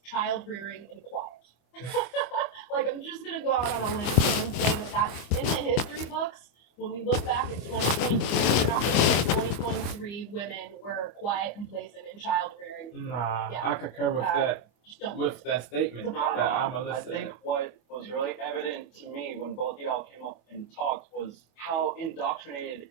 child-rearing, and quiet. Like, I'm just gonna go out on a limb and say that in the history books, when we look back at 2022, we're not gonna say 2023 women were quiet, complacent, and child-rearing. Nah, Yeah. I concur with that. With that statement that Amala I said. think what was really evident to me when both of y'all came up and talked was how indoctrinated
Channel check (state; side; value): late; right; 25 ms